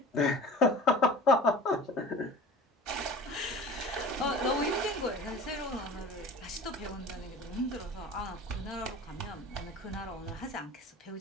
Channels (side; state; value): both; normal; correlation 0.41